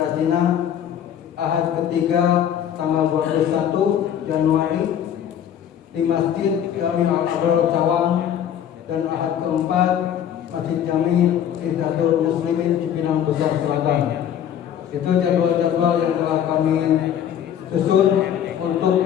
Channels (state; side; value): quieter; right; 9.6 dB